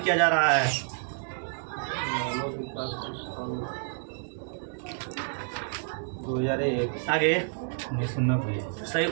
किया जा रहा है? 2001। आगे 1990। सही,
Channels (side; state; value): left; silent; digital silence